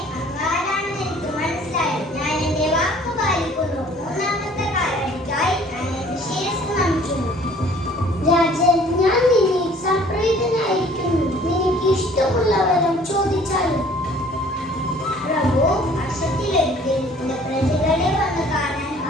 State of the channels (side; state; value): both; normal; correlation 0.54